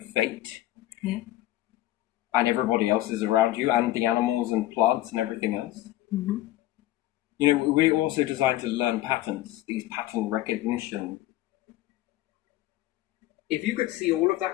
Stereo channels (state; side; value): quieter; right; 15.2 dB